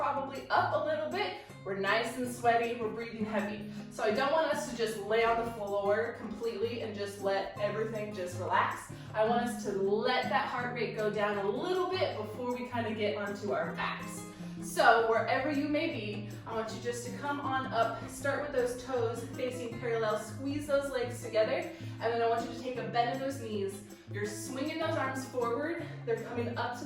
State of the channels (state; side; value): identical; both; correlation 1.00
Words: up a little bit. We're nice and sweaty, we're breathing heavy. So I don't want us to just lay on the floor completely and just let everything just relax. I want us to let that heart rate go down a little bit before we kind of get onto our backs. So wherever you may be, I want you just to come on up, start with those toes facing parallel, squeeze those legs together, and then I want you to take a bend of those knees. You're swinging those arms forward, they're coming up to